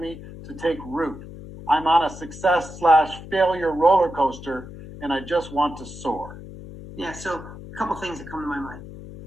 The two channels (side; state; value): left; noise; hum, 14 dB below the sound